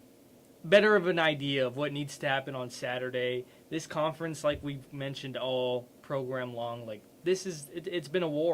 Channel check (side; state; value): both; identical; correlation 1.00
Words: better of an idea of what needs to happen on Saturday. This conference, like we've mentioned all program long, like it's been a